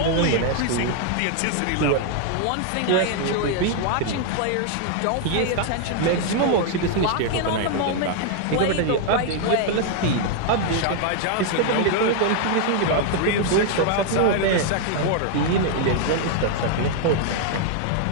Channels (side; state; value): both; different; correlation 0.00